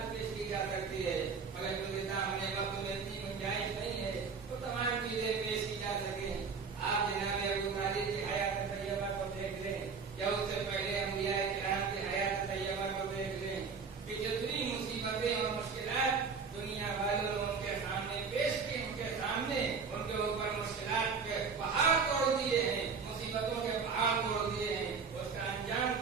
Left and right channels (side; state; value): left; quieter; 5.4 dB